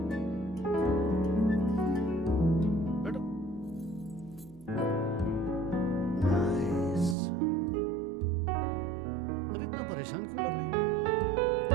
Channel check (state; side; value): drops out; left; at 7.2 s